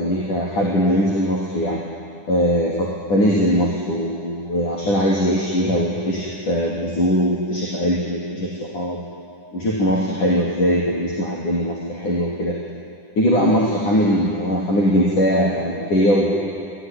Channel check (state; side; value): late; right; 10 ms